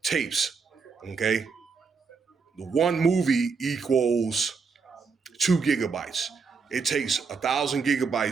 tapes. Okay, the one movie equals 2 gigabytes. It takes 1,000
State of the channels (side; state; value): left; quieter; 5.1 dB